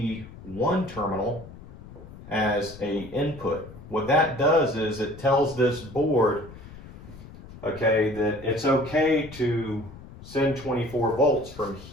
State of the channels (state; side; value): noise; left; rumble, 17 dB below the sound